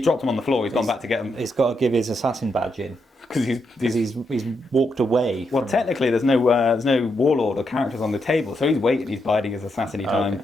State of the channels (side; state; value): both; normal; correlation 0.81